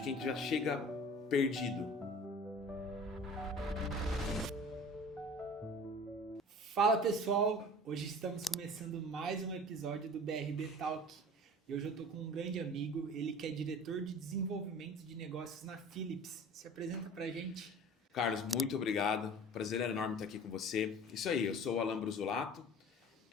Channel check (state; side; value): normal; both; correlation 0.42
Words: quem já chega perdido. Fala pessoal, hoje estamos começando mais um episódio do BRB Talk e hoje eu estou com um grande amigo, ele que é diretor de desenvolvimento de negócios na Philips. Se apresenta pra gente. Carlos, muito obrigado, prazer enorme estar aqui com você. Isso aí, eu sou o Alan Brusolato,